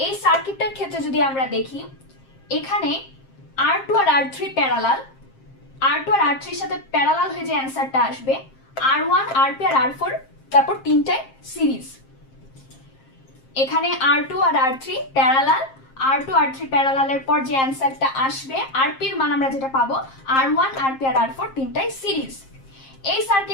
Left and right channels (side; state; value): right; late; 7.5 ms